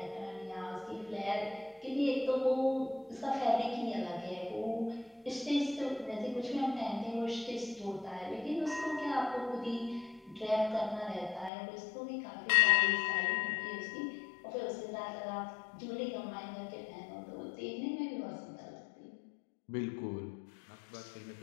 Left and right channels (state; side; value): drops out; right; at 11.5 s